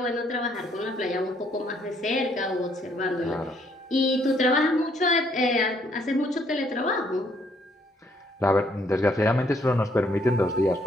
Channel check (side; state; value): both; normal; correlation 0.68